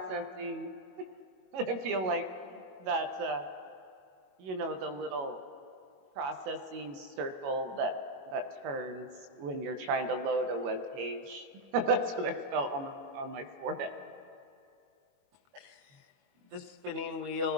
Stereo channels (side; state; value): left; late; 21 ms